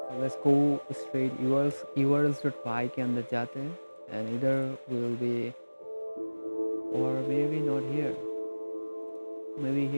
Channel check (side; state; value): both; inverted; correlation -1.00